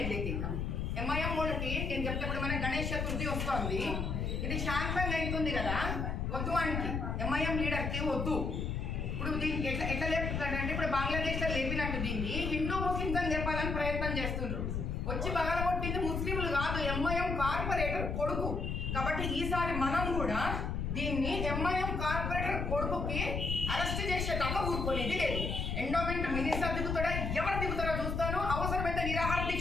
లేదు ఇంకా. ఎంఐఎం వాళ్ళకి నేను చెప్తే మన గణేష్ చతుర్థి వస్తుంది. ఇది శాంతంగా అవుతుంది కదా, వద్దు అంటే ఎంఐఎం లీడర్కి వద్దు. ఇప్పుడు దీనికి ఎట్లా లేపుతాడంటే ఇప్పుడు బంగ్లాదేశ్లో లేపినట్టు దీన్ని హిందూ ముస్లింస్ అని చెప్పాలని ప్రయత్నం చేస్తుండ్రు. వచ్చి పగలగొట్టింది ముస్లింలు కాదు, ఎంఐఎం కార్పొరేటర్ కొడుకు. కాబట్టి ఈసారి మనం కూడా దీన్ని ఎంఐఎం కార్పొరేటర్ కొడుకుకి అరెస్ట్ చేసేదాకా ఊరుకునేది లేదు. ఎండోమెంట్ మినిస్టర్ దిగుతాడా, ఎవరు దిగుతాడో చూస్తాను. అవసరమైతే నిరాహార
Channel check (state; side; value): noise; left; rumble, 2 dB below the sound